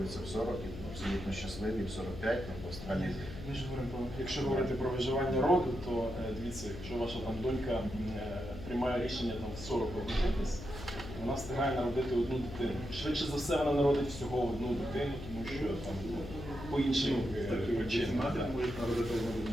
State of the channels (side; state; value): left; noise; hum, 11 dB below the sound